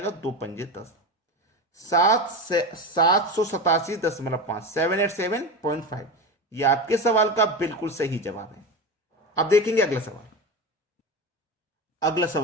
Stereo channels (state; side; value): normal; both; correlation 0.23